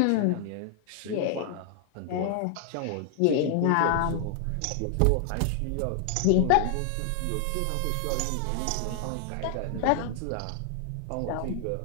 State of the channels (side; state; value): both; different; correlation 0.00